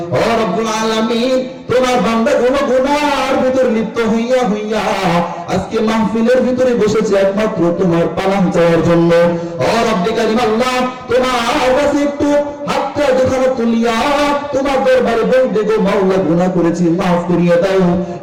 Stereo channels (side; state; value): both; identical; correlation 1.00